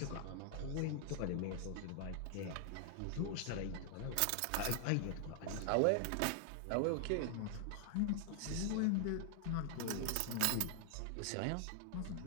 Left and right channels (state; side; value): different; both; correlation 0.00